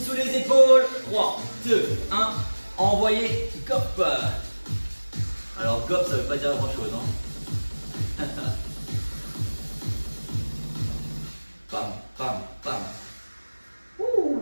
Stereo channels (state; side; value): inverted; both; correlation -1.00